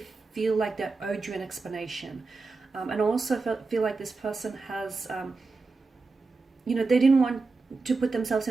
feel like they owed you an explanation. And also feel like this person has, they didn't want to put themselves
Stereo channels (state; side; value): quieter; left; 3.9 dB